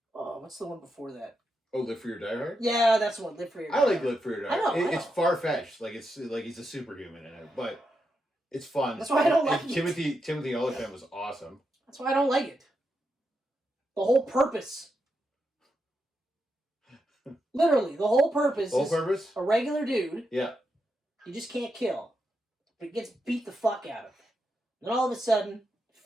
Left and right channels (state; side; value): normal; both; correlation 0.85